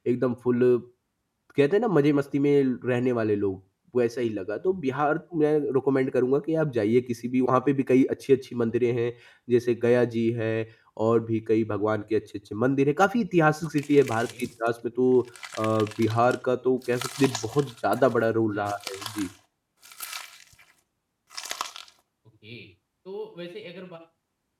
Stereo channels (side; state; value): both; identical; correlation 1.00